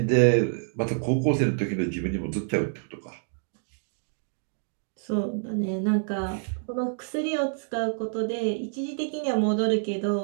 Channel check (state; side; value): silent; left; digital silence